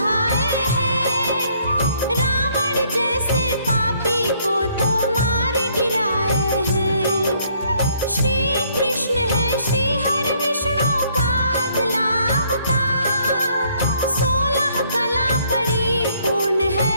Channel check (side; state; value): both; inverted; correlation -0.66